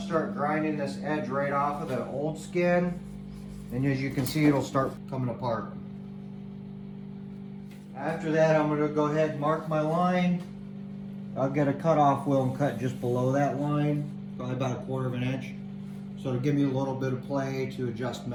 start grinding this edge right off of the old skin. And as you can see, it'll start coming apart. After that, I'm going to go ahead and mark my line. I'll get a cutoff wheel and cut just below that line, probably about 1/4 of an inch. So to give me a little bit of play to adjust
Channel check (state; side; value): identical; both; correlation 1.00